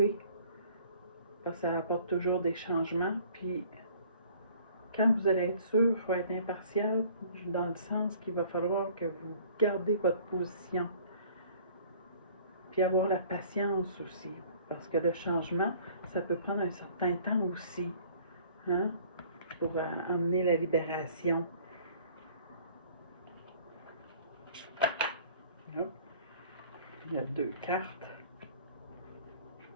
Parce que ça apporte toujours des changements. Puis, quand vous allez être sûr, il faut être impartial dans le sens qu'il va falloir que vous gardez votre position. Puis avoir la patience aussi. Parce que le changement, ça peut prendre un certain temps aussi. Hein? Pour amener la libération. Là, il y a 2 cartes.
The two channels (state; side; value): inverted; both; correlation -0.53